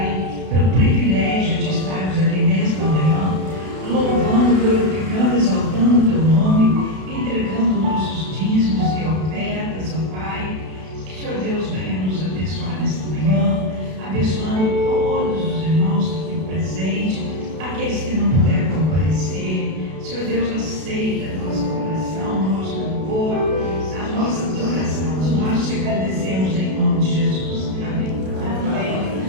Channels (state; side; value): late; left; 32 ms